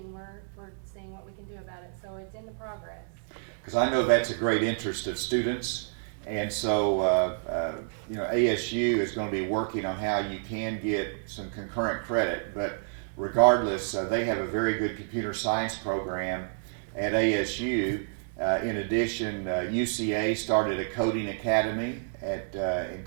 we're seeing what we can do about it. So it's in the progress. Because I know that's a great interest of students, and so ASU is going to be working on how you can get some concurrent credit. But regardless, they have a very good computer science program at ASU. In addition, UCA started a coding academy in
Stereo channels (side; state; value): left; silent; digital silence